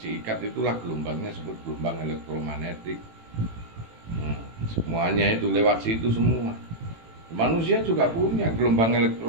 ikat, itulah gelombangnya disebut gelombang elektromagnetik. Semuanya itu lewat situ semua. Manusia juga punya gelombang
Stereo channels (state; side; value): late; left; 18 ms